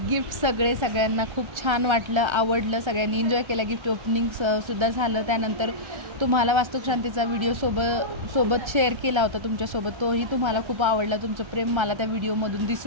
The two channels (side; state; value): left; late; 1.3 ms